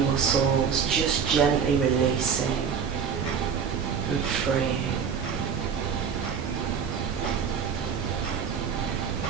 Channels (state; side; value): quieter; left; 6.9 dB